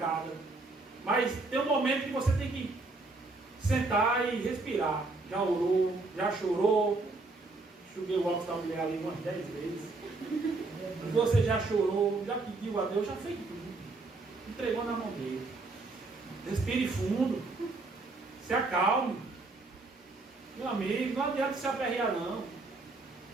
Mas tem um momento que você tem que sentar e respirar. Já orou, já chorou. Enxuguei o óculos da mulher ali umas 10 vezes. Você já chorou, já pediu a Deus, já fez tudo. Entregou na mão dele. Respire fundo. Se acalme. Meu amigo, não adianta se aperrear não.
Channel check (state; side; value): quieter; left; 3.4 dB